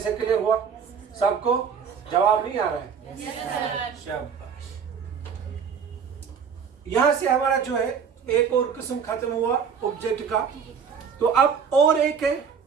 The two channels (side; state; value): left; quieter; 6.7 dB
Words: क्लियर हुआ? सबको जवाब नहीं आ रहा है? शाबाश। यहां से हमारा जो है एक और किस्म खत्म हुआ ऑब्जेक्ट का। तो अब और एक है